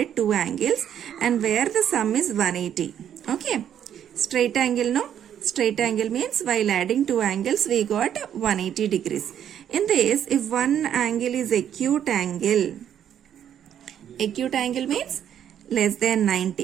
two angles, and where the sum is 180. Okay, straight angle, no? Straight angle means while adding two angles we got 180 degrees. In this, if one angle is acute angle means less than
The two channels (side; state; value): left; quieter; 9.7 dB